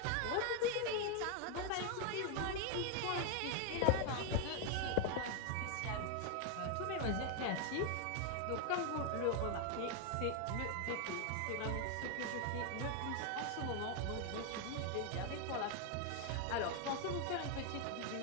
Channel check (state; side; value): different; both; correlation 0.00